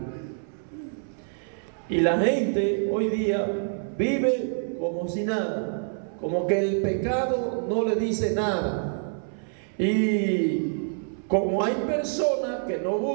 Y la gente hoy día vive como si nada, como que el pecado no le dice nada. Y como hay personas que no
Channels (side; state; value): left; silent; 60 dB below the other